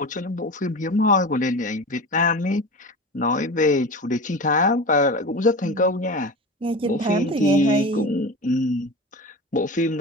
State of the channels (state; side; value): normal; both; correlation 0.30